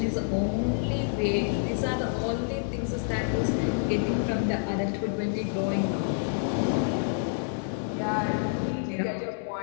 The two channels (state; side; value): silent; right; 59 dB below the other